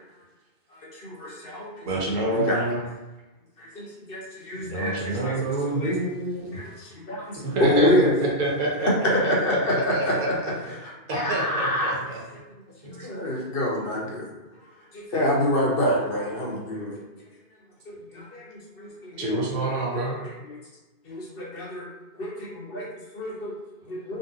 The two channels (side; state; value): right; late; 2.7 ms